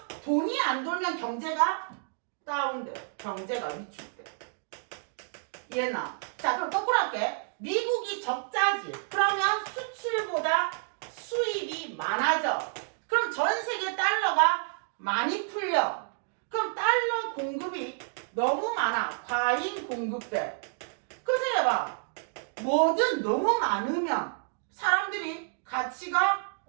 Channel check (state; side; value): silent; left; digital silence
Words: 돈이 안 돌면 경제가 다운돼. 경제가 위축돼. 이해나? 자, 그럼 거꾸로 할게. 미국이 적자지. 그러면 수출보다 수입이 많아져. 그럼 전 세계 달러가 많이 풀려. 그럼 달러 공급이 너무 많아. 과잉 공급돼. 그럼 생각해봐. 뭐든 너무 많으면 사람들이 가치가